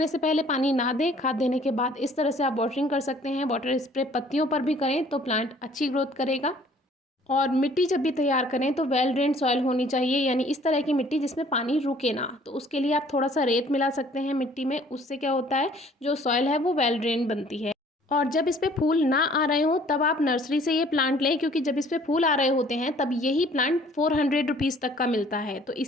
से पहले पानी ना दें, खाद देने के बाद इस तरह से आप वाटरिंग कर सकते हैं। वाटर स्प्रे पत्तियों पर भी करें तो प्लांट अच्छी ग्रोथ करेगा। और मिट्टी जब भी तैयार करें तो वेल ड्रेन सॉइल होनी चाहिए, यानी इस तरह की मिट्टी जिसमें पानी रुके ना। तो उसके लिए आप थोड़ा सा रेत मिला सकते हैं मिट्टी में। उससे क्या होता है, जो सॉइल है वो वेल ड्रेन बनती है। और जब इस पे फूल ना आ रहे हों तब आप नर्सरी से ये प्लांट लें, क्योंकि जब इस पे फूल आ रहे होते हैं तब यही प्लांट 400 रुपीज़ तक का मिलता है। तो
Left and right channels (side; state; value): both; normal; correlation 0.56